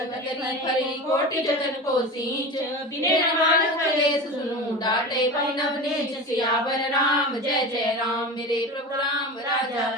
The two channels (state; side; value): normal; both; correlation 0.29